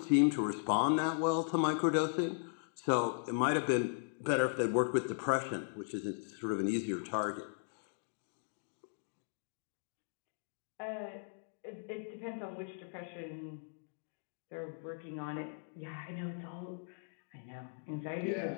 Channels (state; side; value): silent; right; digital silence